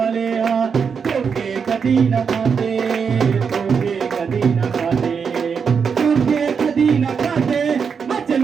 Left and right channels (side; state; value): left; quieter; 6.2 dB